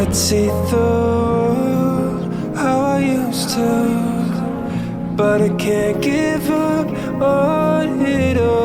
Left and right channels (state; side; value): identical; both; correlation 1.00